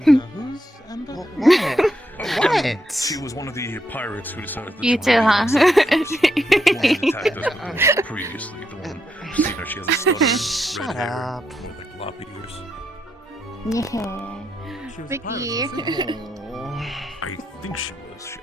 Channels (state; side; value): normal; both; correlation 0.80